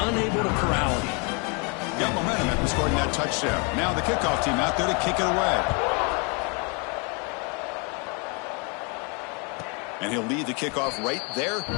unable to corral him. Got momentum after scoring that touchdown. Now the kickoff team out there to kick it away. And he'll lead the kickoff right there.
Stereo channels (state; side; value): quieter; right; 33.6 dB